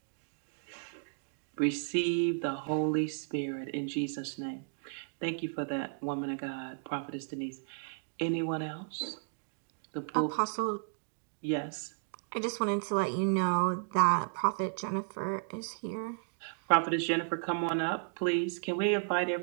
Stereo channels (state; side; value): silent; left; digital silence